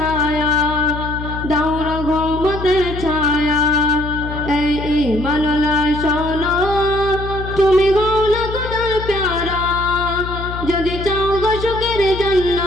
দাওরা ঘুমতের ছায়া এই ইমানলা শোনো তুমি গৌলা খোদার প্যারা যদি চাও গো সুখের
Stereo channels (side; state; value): left; noise; hum, 8 dB below the sound